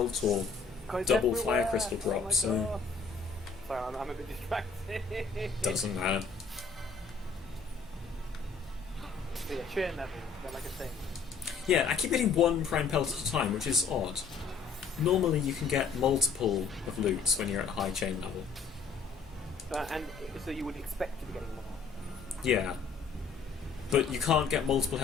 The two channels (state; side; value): quieter; right; 5.2 dB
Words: or God, it's double everywhere. fire crystal Oh my drop, so God. Sorry, I'm a bit distracted. doesn't matter. So yeah, chain level, like a thing. Yeah, I keep getting one prime pelt at a time, which is odd. Normally you can get multiple of loots when you're at high chain level. And so you would expect to be getting more. Yeah. But you can't get multiple